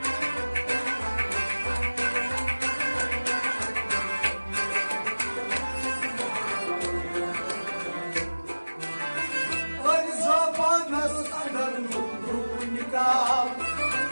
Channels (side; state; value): both; inverted; correlation -1.00